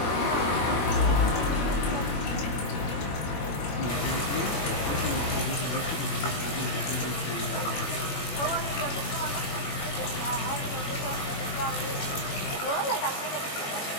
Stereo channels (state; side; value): late; right; 21 ms